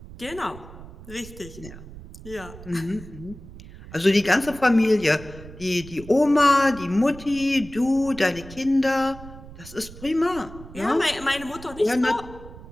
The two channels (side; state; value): right; noise; rumble, 16 dB below the sound